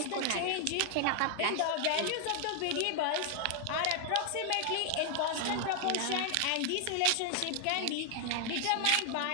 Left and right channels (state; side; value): different; both; correlation 0.00